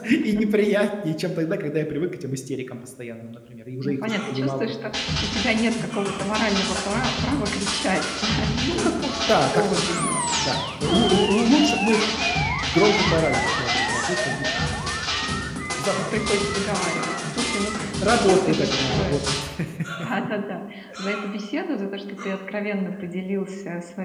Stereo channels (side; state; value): both; identical; correlation 1.00